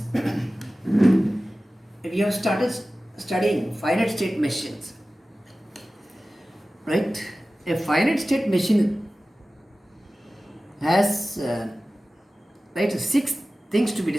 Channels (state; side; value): normal; both; correlation 0.96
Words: we have started studying finite state machines, right? A finite state machine has right six things to be